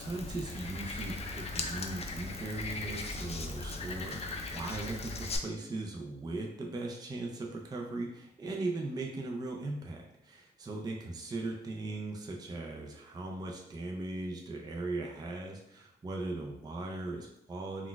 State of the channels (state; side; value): normal; both; correlation 0.66